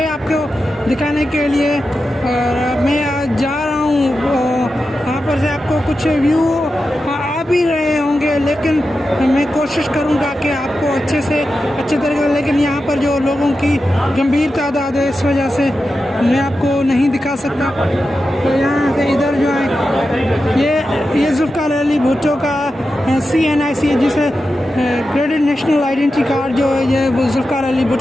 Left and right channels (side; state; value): both; normal; correlation 0.91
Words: आपको दिखाने के लिए। और मैं आज जा रहा हूँ, यहाँ पर से आपको कुछ व्यू आ भी रहे होंगे, लेकिन मैं कोशिश करूँगा कि आपको अच्छे तरीके से, लेकिन यहाँ पर जो लोगों की गंभीर तादाद है इस वजह से मैं आपको नहीं दिखा सकता। तो यहाँ से इधर जो है ये जुल्फ़िकार अली भुट्टो का CNIC जिसे क्रेडिट नेशनल आइडेंटिटी कार्ड जो है ये जुल्फ़िकार अली